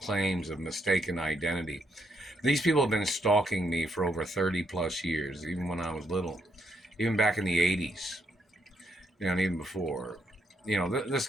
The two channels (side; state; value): both; normal; correlation 0.76